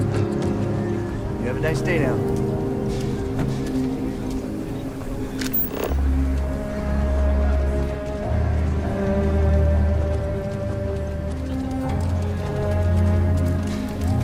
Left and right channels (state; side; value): identical; both; correlation 1.00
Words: You have a nice day now.